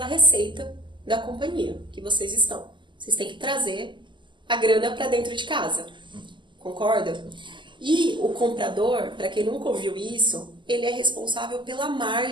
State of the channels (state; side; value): late; left; 0.23 ms